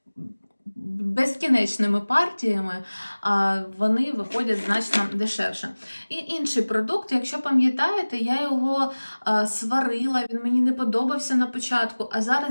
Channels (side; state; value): both; inverted; correlation -1.00